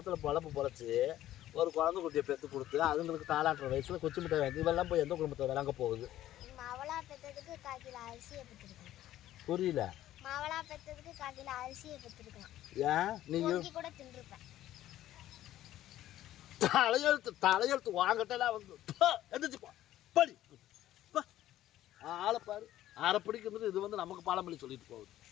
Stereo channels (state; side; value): quieter; right; 13.5 dB